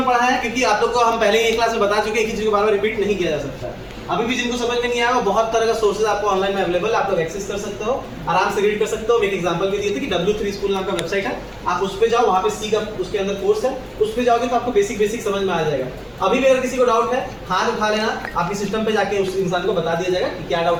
पढ़ा है क्योंकि आप लोग को हम पहले ही एक क्लास में बता चुके हैं, किसी चीज को बार-बार रिपीट नहीं किया जा सकता है। अभी भी जिनको समझ में नहीं आया बहुत तरह का सोर्सेज आपको ऑनलाइन में अवेलेबल है, आप लोग एक्सेस कर सकते हो, आराम से रीड कर सकते हो। एक एग्जांपल भी दिए थे कि W3 स्कूल नाम का वेबसाइट है, आप उस पे जाओ, वहां पे सी का उसके अंदर कोर्स है, उस पे जाओगे तो आपको बेसिक समझ में आ जाएगा। अभी भी अगर किसी को डाउट है हाथ उठा लेना, आपके सिस्टम पे जाके उस इंसान को बता दिया जाएगा कि क्या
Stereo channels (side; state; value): both; identical; correlation 1.00